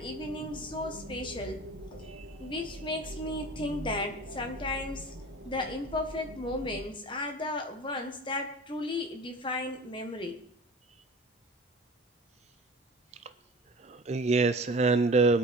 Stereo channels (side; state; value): both; normal; correlation 0.38